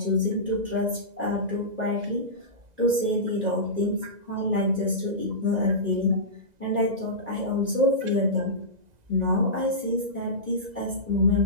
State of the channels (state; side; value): late; left; 2.0 ms